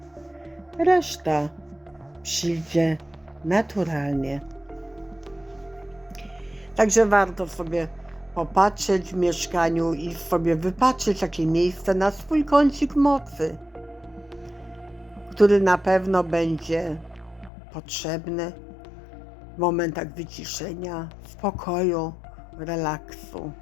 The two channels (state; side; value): drops out; right; at 17.5 s